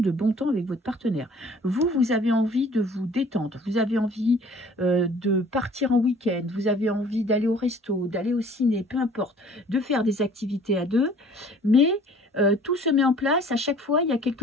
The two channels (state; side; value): normal; both; correlation 0.52